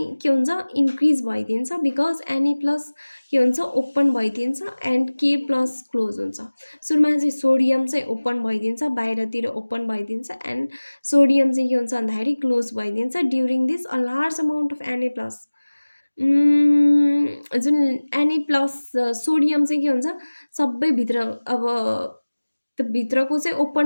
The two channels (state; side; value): inverted; both; correlation -1.00